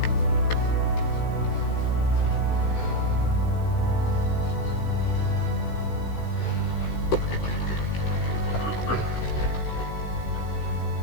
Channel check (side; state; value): right; late; 16 ms